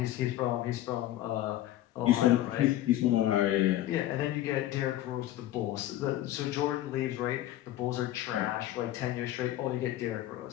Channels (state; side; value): quieter; right; 13.8 dB